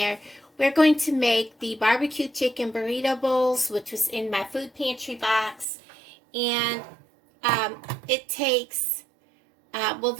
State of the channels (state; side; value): drops out; left; at 5.7 s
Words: We're going to make the barbecue chicken burrito bowls, which was in my food pantry box, and it takes,